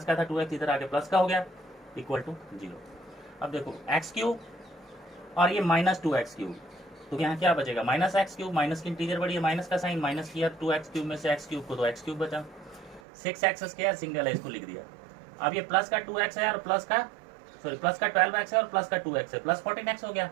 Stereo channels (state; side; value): drops out; left; at 13.0 s